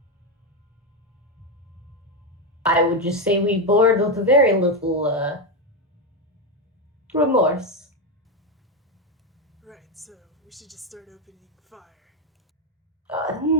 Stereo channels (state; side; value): normal; both; correlation 0.08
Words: would just say we board with very little remorse. Right, so we should just start opening fire.